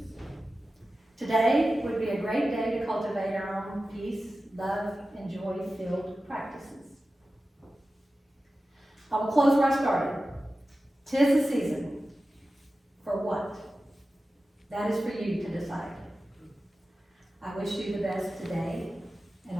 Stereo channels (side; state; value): both; normal; correlation 0.94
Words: Today would be a great day to cultivate our own peace, love, and joy-filled practices. I will close where I started. 'Tis the season. For what? That is for you to decide. I wish you the best today and